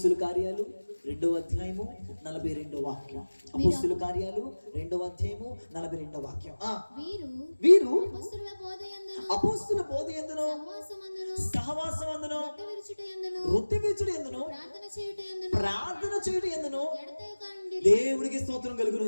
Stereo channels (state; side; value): inverted; both; correlation -1.00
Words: కార్యాలు 2వ అధ్యాయము 42వ వాక్యం. అపోస్తుల కార్యాలు 2వ అధ్యాయము 42వ వాక్యం. వీరు అపోస్తుల బోధయందును సహవాసమందును వృత్తి విరుచుటయందును ప్రార్థన చేయుటయందును దేవుడికి స్తోత్రం కలుగును